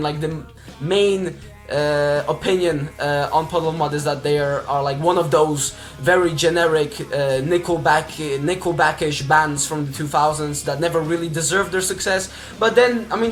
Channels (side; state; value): both; identical; correlation 1.00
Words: like the main opinion on Puddle of Mudd is that they are like one of those very generic Nickelback-ish bands from the 2000s that never really deserved their success. But then, I